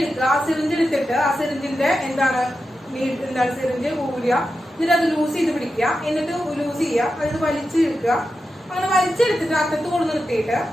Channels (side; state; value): both; normal; correlation 0.90